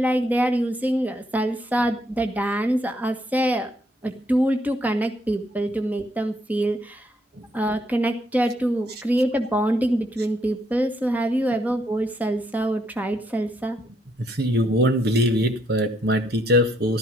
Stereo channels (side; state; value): both; normal; correlation 0.73